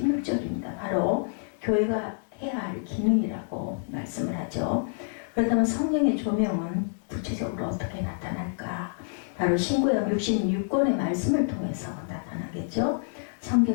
바로 교회가 해야 할 기능이라고 말씀을 하죠. 그렇다면 성령의 조명은 구체적으로 어떻게 나타날까? 바로 신구약 66권의 말씀을 통해서 나타나겠죠.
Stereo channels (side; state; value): right; silent; digital silence